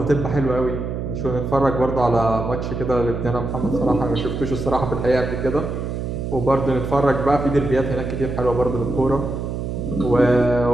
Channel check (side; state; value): right; noise; hum, 4 dB below the sound